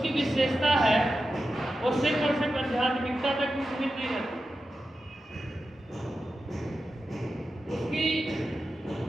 विशेषता है वो सिर्फ और सिर्फ आध्यात्मिकता तक ही सीमित नहीं रहती। उसकी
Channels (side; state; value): both; normal; correlation 0.91